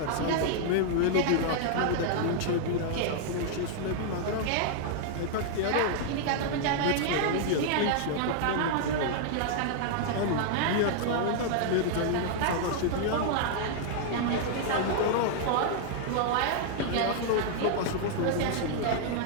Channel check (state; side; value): different; both; correlation -0.01